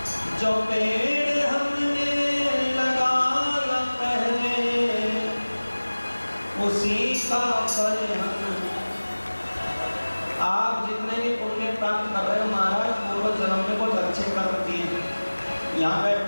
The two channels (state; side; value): inverted; both; correlation -1.00